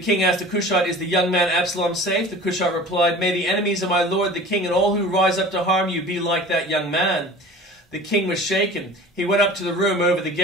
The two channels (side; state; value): both; normal; correlation 0.40